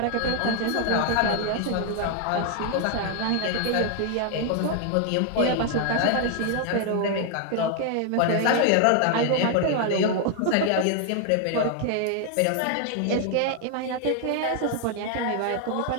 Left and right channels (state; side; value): different; both; correlation 0.00